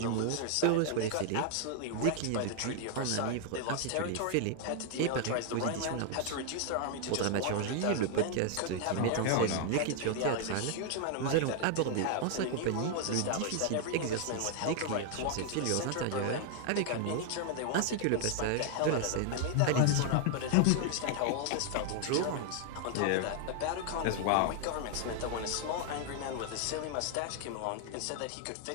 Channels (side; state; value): both; different; correlation 0.00